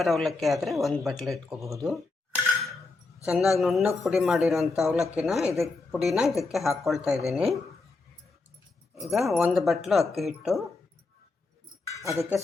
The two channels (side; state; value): right; quieter; 3.6 dB